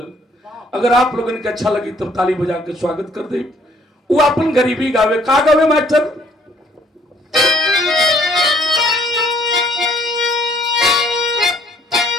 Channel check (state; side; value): normal; both; correlation 0.63